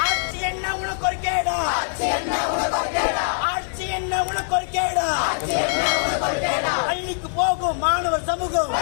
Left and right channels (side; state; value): right; silent; digital silence